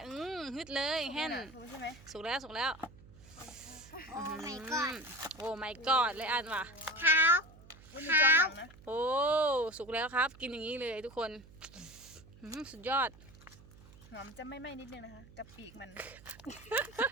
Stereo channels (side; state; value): right; noise; hum, 21 dB below the sound